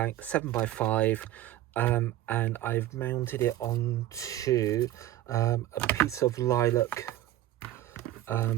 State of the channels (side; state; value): left; quieter; 13.8 dB